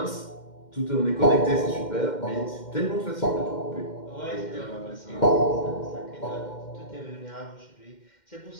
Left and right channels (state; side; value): late; right; 2.1 ms